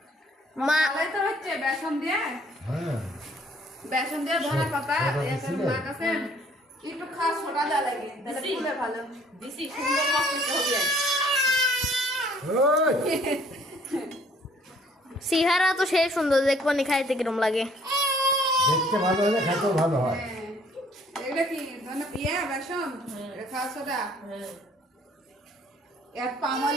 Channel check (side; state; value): both; normal; correlation 0.59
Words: মা তো হচ্ছে বেসন দিয়ে, হ্যাঁ বেসন দিয়ে ধনেপাতা মা কাছে একটু খাস সোডা দেওয়া লাগে, তাহলে ফুলে ভালো। দিছি সুন্দর মসলা হবে। ওই সিহারা তো সেই সুন্দর, দেখবো নি খাইতে কিরম লাগে। দেখতে ভালো হলে খেতেও ভালো হয়। এটা কি ধনে বেসন খাস সোডা, এর